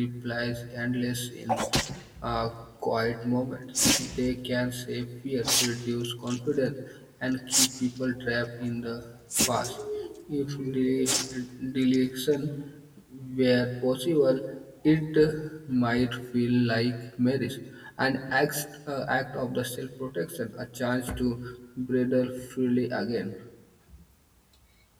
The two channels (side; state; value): both; identical; correlation 1.00